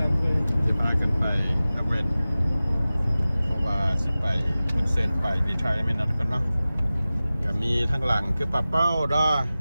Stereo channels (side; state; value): both; inverted; correlation -0.97